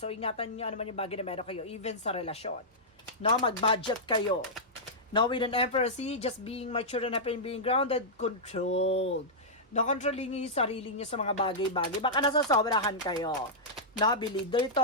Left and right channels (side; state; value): both; normal; correlation -0.10